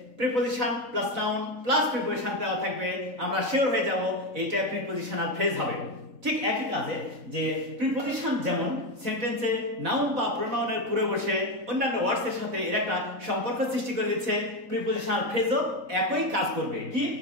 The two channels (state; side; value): late; left; 4.1 ms